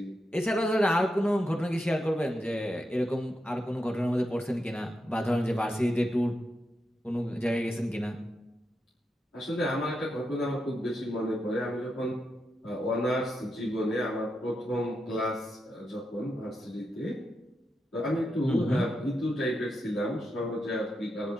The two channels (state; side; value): normal; both; correlation 0.85